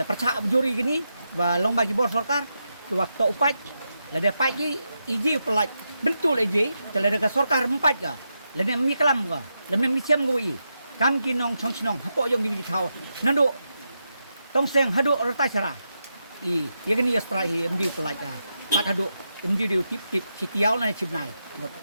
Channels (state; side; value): inverted; both; correlation -0.86